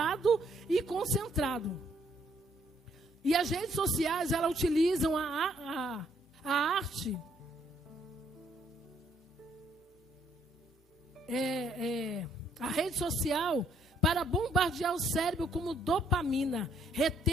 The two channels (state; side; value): normal; both; correlation 0.68